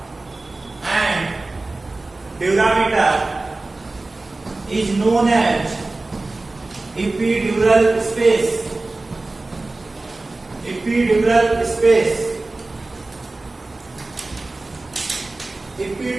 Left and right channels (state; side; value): quieter; left; 3.2 dB